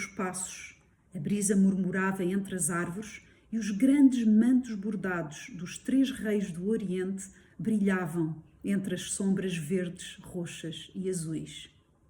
passos. A brisa murmurava entre as árvores e os grandes mantos bordados dos três reis do Oriente brilhavam entre as sombras verdes, roxas e azuis.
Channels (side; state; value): both; identical; correlation 1.00